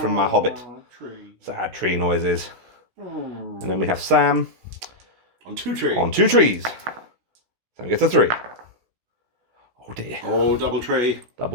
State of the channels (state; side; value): late; left; 16 ms